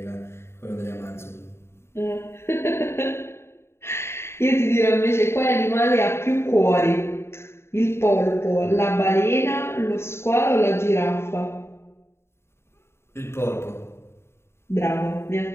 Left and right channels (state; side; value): late; right; 0.12 ms